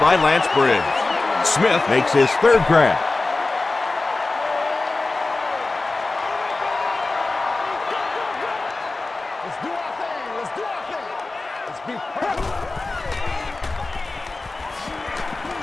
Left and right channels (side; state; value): right; quieter; 3.4 dB